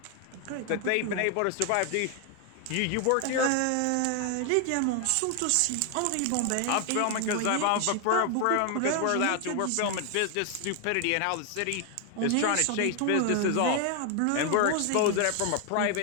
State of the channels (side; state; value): both; different; correlation 0.00